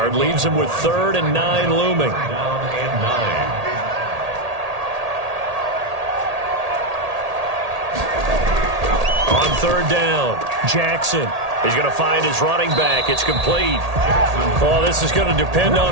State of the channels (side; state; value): left; late; 1.8 ms